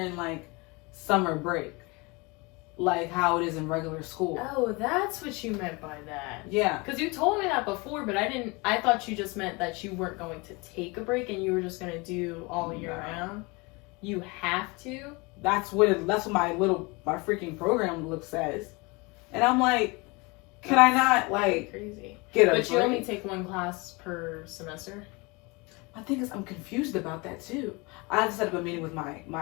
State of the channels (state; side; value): quieter; right; 26.8 dB